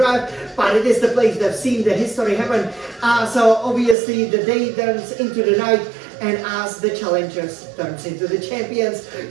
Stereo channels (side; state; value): left; drops out; at 4.0 s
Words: but it is the place that's seen the history happen. So obviously the day turns into the night, and as the challengers turns into the champions.